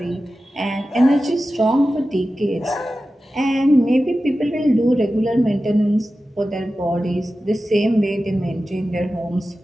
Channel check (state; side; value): normal; both; correlation 0.94